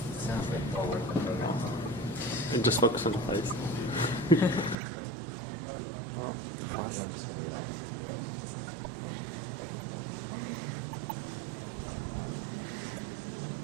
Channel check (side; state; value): left; drops out; at 4.8 s